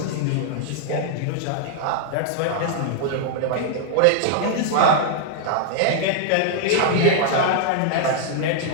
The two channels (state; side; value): different; both; correlation -0.01